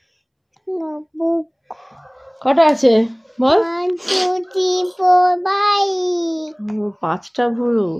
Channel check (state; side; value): identical; both; correlation 1.00